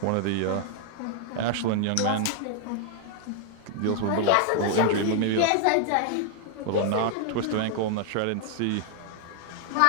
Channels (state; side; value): different; both; correlation 0.00